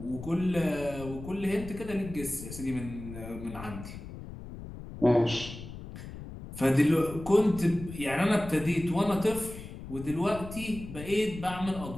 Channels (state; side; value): noise; left; rumble, 12 dB below the sound